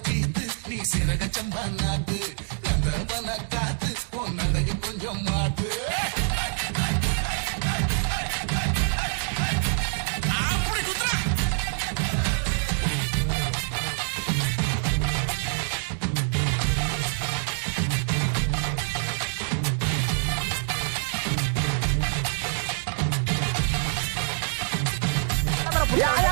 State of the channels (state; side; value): silent; left; 61 dB below the other